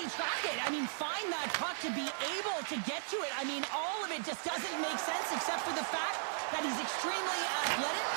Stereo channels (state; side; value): silent; left; digital silence